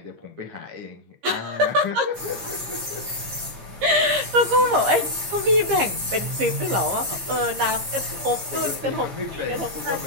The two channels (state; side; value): late; left; 15 ms